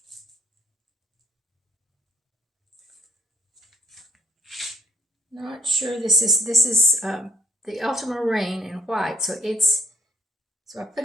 Not sure this is the ultramarine in white, so I put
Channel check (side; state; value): both; normal; correlation 0.67